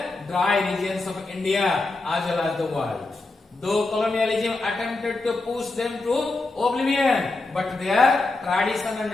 dry regions of India as well as the world. Though colonialism attempted to push them to oblivion, but their tradition and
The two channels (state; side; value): quieter; right; 3.2 dB